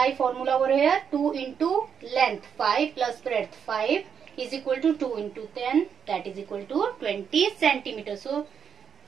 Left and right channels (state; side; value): quieter; left; 7.3 dB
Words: formula over here. 2 into length 5 plus breadth 5 is equal to 2 into 10, that is equal to 20 centimeters. So